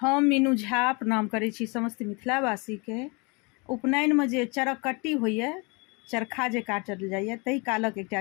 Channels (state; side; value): quieter; right; 30.0 dB